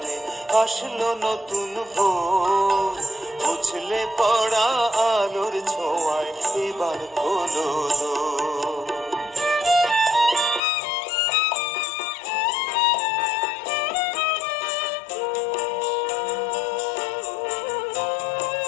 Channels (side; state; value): right; drops out; at 10.6 s